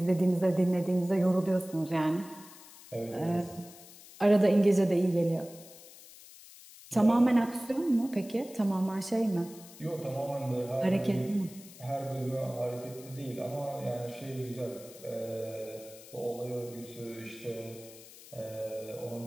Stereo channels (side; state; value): left; noise; hiss, 19 dB below the sound